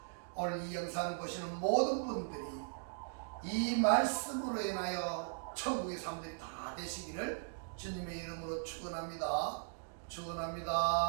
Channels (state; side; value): silent; left; digital silence